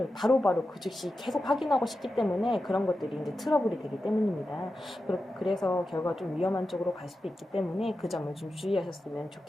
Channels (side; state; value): both; normal; correlation 0.91